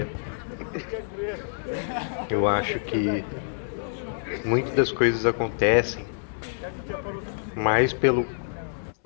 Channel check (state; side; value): silent; right; 60 dB below the other